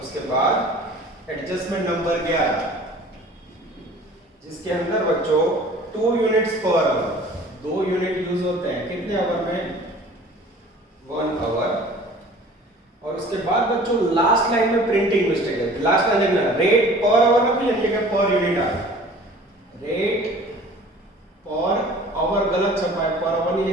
उसके बाद एडजस्टमेंट नंबर 11, जिसके अंदर बच्चों 2 units per hour, 2 unit use होते हैं कितने आवर में, 1 आवर। और उसके बाद बच्चों लास्ट लाइन में प्रिंटिंग मिस्टेक है, लास्ट लाइन देखना, रेट पर आवर ना कोई लिखा पर यूनिट आ, रेट पर आवर गलत छपा है, पर आवर नहीं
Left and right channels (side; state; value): both; normal; correlation 0.47